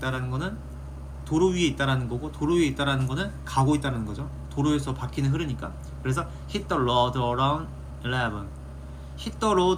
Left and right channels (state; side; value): identical; both; correlation 1.00